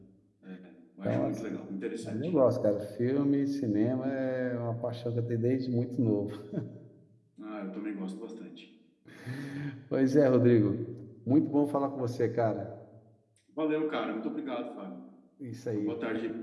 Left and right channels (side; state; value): both; identical; correlation 1.00